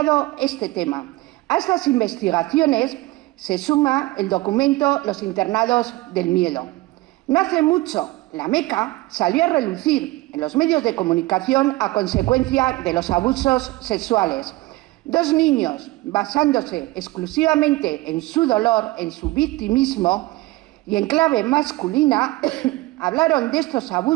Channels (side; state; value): left; quieter; 19.7 dB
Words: este tema. A estas investigaciones se suma el documento Los internados del miedo. No hace mucho, la Meca salió a relucir en los medios de comunicación a consecuencia de los abusos sexuales. Dos niños, basándose exclusivamente en su dolor, en su victimismo y en clave masculina, hablaron de estos